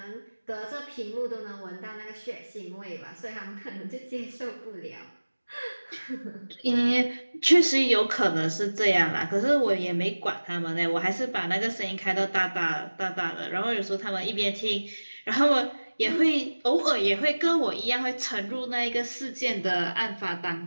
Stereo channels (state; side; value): inverted; both; correlation -1.00